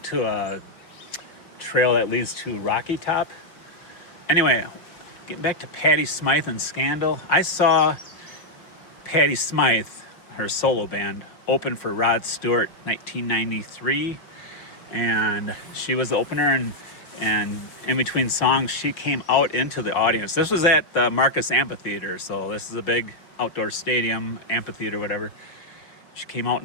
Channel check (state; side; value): late; right; 5.6 ms